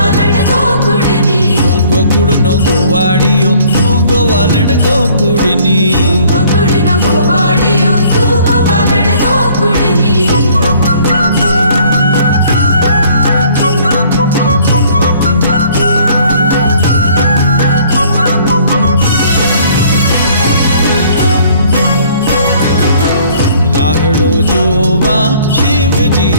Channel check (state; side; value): inverted; both; correlation -0.57